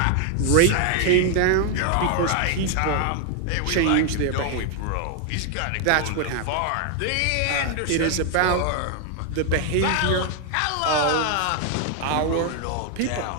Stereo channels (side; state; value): both; different; correlation 0.00